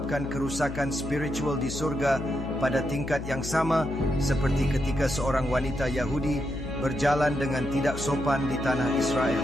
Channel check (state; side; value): noise; left; hum, 8 dB below the sound